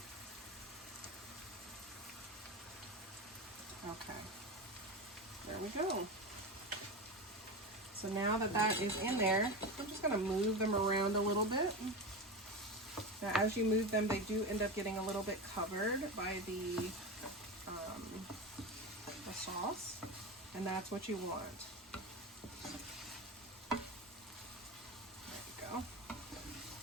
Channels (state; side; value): normal; both; correlation 0.22